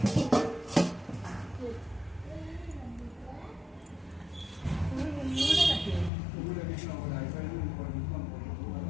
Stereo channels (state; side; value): drops out; right; at 6.1 s